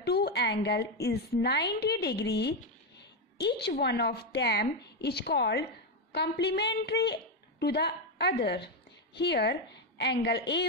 two angles is 90 degrees, each one of them is called complementary to the other. Here, angle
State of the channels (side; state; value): both; normal; correlation 0.06